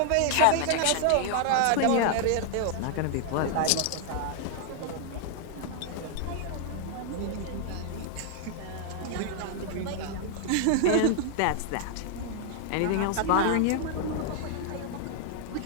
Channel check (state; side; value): different; both; correlation 0.00